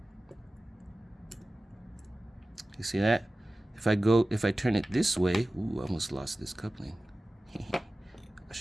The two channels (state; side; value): normal; both; correlation 0.96